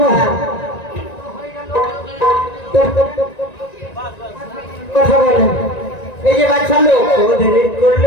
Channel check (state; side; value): late; right; 1.9 ms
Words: কথা বলেন। এই যে বাচ্চা লোক